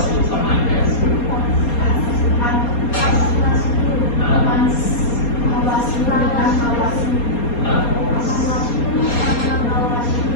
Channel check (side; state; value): right; late; 4.3 ms